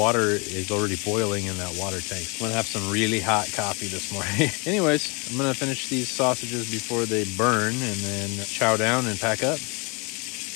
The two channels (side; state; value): right; quieter; 30.6 dB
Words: is already boiling in that water tank. I'm gonna have some really hot coffee this morning. Anyways, I'm gonna finish these sausages before they burn and then chow down and pack up.